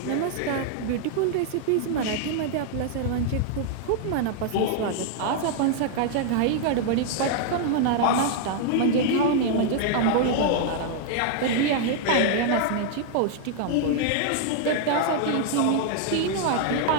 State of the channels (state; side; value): different; both; correlation -0.01